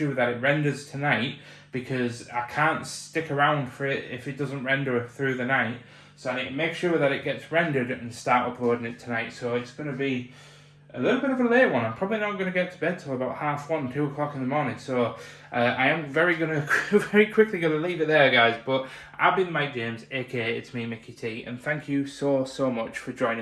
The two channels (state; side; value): identical; both; correlation 1.00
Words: that it renders tonight, because I can't stick around for it if it doesn't render through the night. So I need to make sure that it gets rendered and start uploading it tonight. So it's going to be a little bit of a late one. I'm probably not going to get to bed till about 1:30, 2 o'clock in the morning. So I am very quickly going to leave it there, guys. But I've been Mike James, aka it's me, Mickey T, and thank you so much for